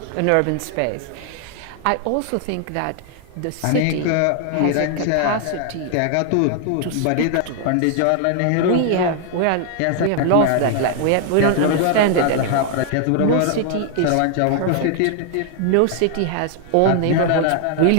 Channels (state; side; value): different; both; correlation 0.00